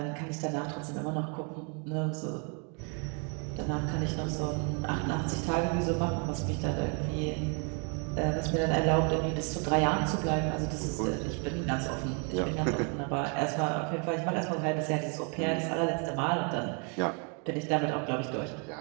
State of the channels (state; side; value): quieter; left; 37.2 dB